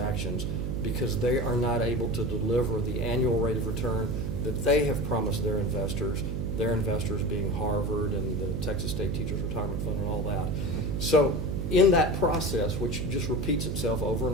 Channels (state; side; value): noise; right; hum, 1 dB below the sound